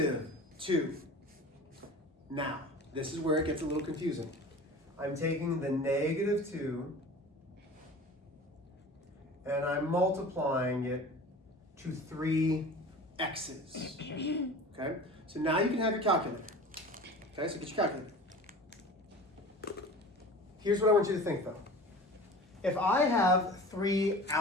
Now, this is where it gets a little confusing. I'm taking the -2 and I'm multiplying it to 3 x's. Okay? So now you can have your calculator. Okay, so get your calculator. Here's what I want you to think though. If I have 3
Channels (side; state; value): both; normal; correlation 0.38